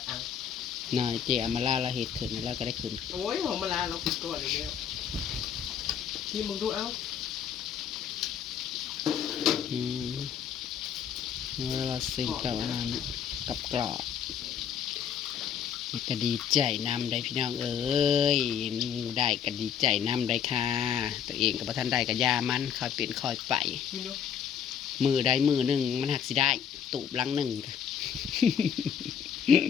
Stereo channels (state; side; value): quieter; right; 8.2 dB